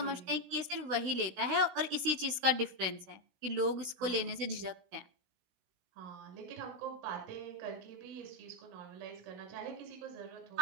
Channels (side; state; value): left; late; 16 ms